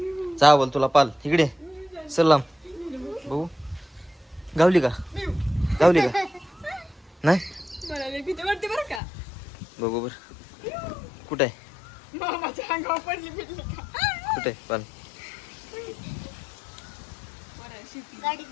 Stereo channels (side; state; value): right; drops out; at 9.0 s